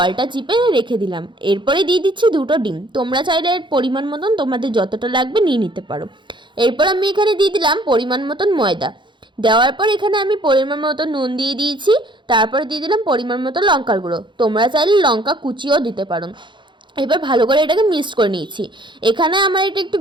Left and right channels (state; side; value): late; left; 0.23 ms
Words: চিপে রেখে দিলাম। এরপরে দিয়ে দিচ্ছি দুটো ডিম। তোমরা চাইলে এর পরিমাণ মতন তোমাদের যতটা লাগবে নিয়ে নিতে পারো। এরপর আমি এখানে দিয়ে দিলাম পরিমাণ মতন ময়দা। দেওয়ার পর এখানে আমি পরিমাণ মতো নুন দিয়ে দিয়েছি। তারপর দিয়ে দিলাম পরিমাণ মতো লঙ্কার গুঁড়ো। তোমরা চাইলে লঙ্কা কুচিও দিতে পারো। এবার ভালো করে এটাকে মিক্সড করে নিয়েছি। এখানে আমার এটা একটু